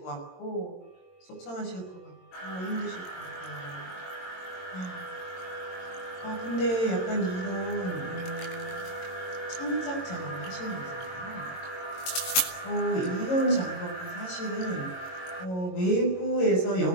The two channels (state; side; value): late; right; 22 ms